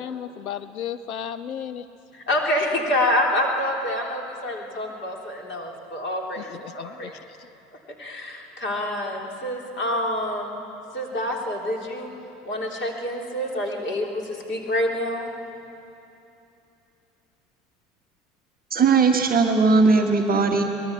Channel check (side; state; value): both; normal; correlation 0.40